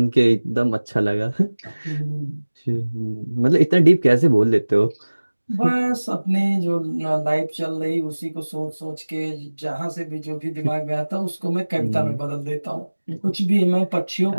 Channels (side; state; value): both; inverted; correlation -1.00